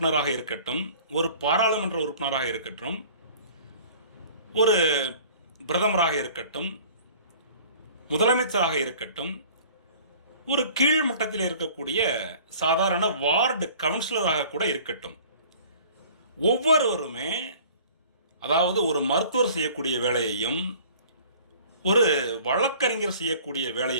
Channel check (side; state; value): both; inverted; correlation -0.48